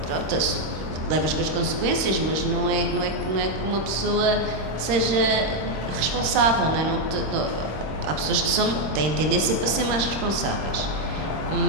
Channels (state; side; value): late; left; 26 ms